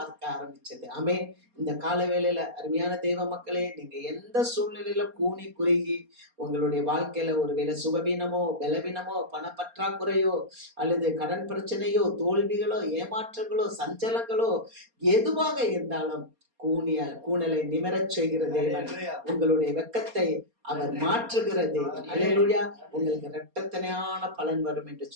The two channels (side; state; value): left; late; 4.3 ms